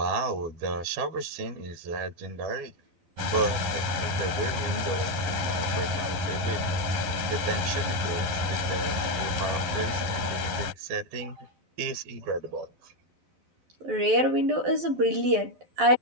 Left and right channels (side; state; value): left; late; 11 ms